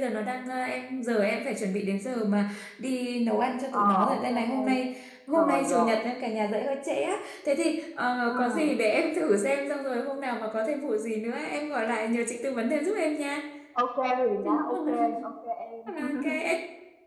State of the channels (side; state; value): both; identical; correlation 1.00